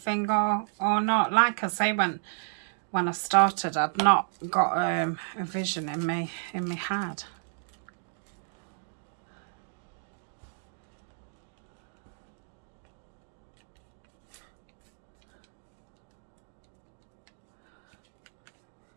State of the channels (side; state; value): left; silent; digital silence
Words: or not. Like I say, when I started, I'd not got a vision in my head.